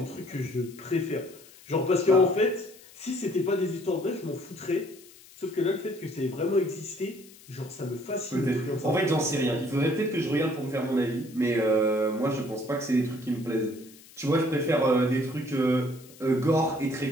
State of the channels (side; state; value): left; noise; hiss, 22 dB below the sound